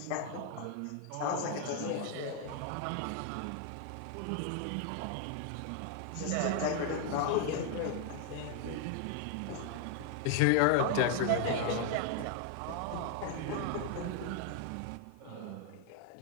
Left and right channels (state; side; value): different; both; correlation 0.00